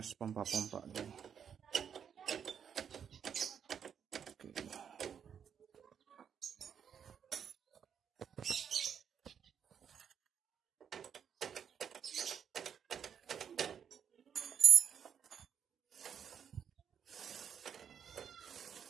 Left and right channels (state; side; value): quieter; left; 7.9 dB